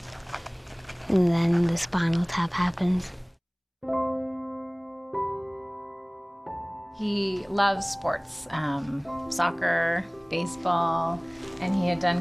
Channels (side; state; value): both; identical; correlation 1.00